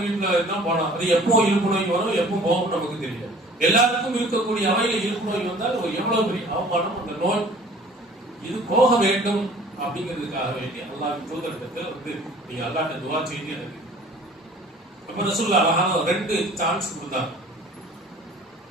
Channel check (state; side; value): normal; both; correlation 0.49